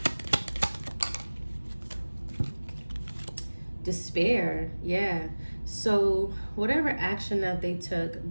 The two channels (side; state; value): both; inverted; correlation -1.00